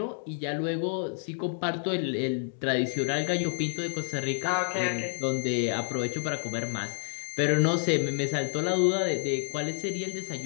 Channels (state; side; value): silent; right; digital silence